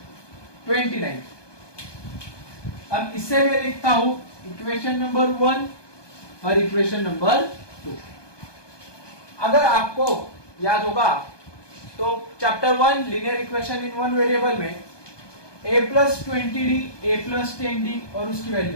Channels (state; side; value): late; right; 1.2 ms